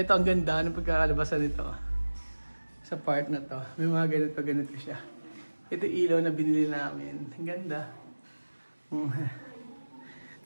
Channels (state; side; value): inverted; both; correlation -1.00